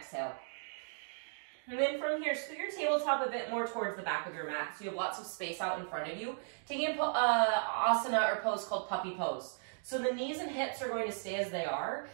And then from here, scoot your tabletop a bit more towards the back of your mat so you have lots of space out in front of you. Taking an asana or pose called puppy pose. So the knees and hips are going to stay as they are.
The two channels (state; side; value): silent; left; digital silence